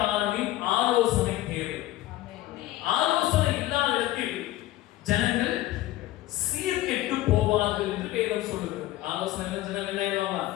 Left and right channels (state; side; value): quieter; right; 15.9 dB